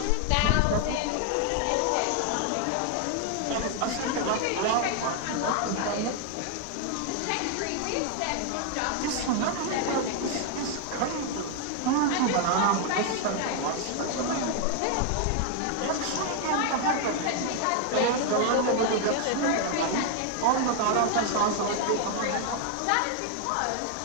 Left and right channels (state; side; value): different; both; correlation 0.00